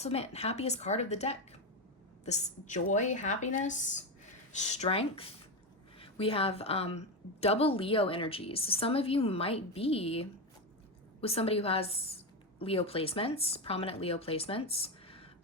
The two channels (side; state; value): both; normal; correlation 0.13